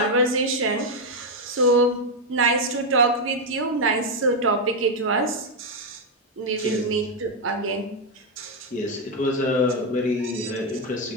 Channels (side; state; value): both; normal; correlation 0.02